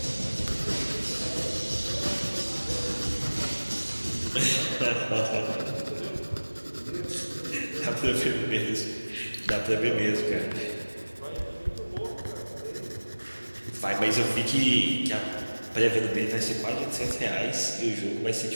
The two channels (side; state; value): both; inverted; correlation -1.00